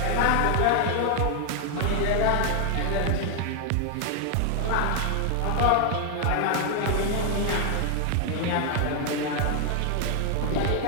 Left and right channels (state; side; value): different; both; correlation 0.00